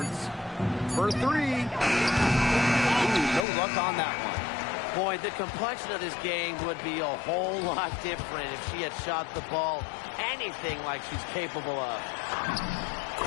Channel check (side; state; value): right; drops out; at 3.5 s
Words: for 3. Ooh, no luck on that one. Boy, the complexion of this game would be a whole lot different if she had shot the ball anything like she's capable of.